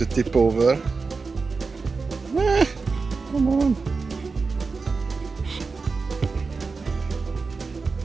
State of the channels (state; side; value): quieter; left; 4.4 dB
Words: tip over. Come on.